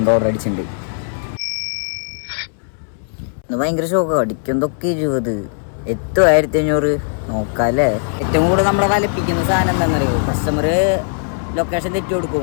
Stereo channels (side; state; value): right; silent; 67 dB below the other